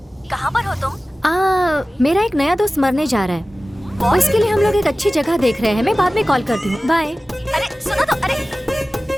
कहाँ पर हो तुम? मेरा एक नया दोस्त मरने जा रहा है। उसके लिए हम लोग एक अच्छी जगह देख रहे हैं। मैं बाद में कॉल करती हूँ। बाय। अरे सुनो तो, अरे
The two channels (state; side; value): normal; both; correlation 0.96